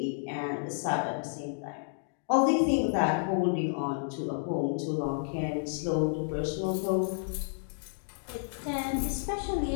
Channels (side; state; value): right; silent; digital silence